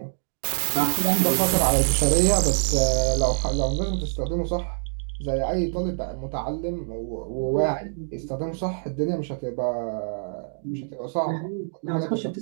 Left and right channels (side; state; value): left; silent; digital silence